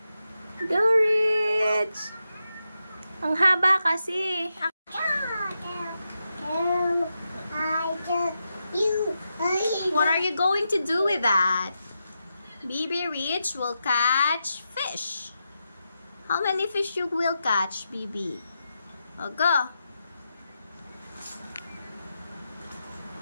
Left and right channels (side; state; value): both; inverted; correlation -0.87